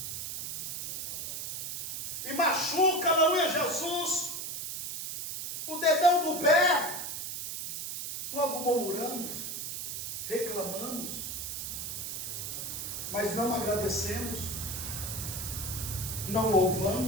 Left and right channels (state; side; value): noise; right; hiss, 5 dB below the sound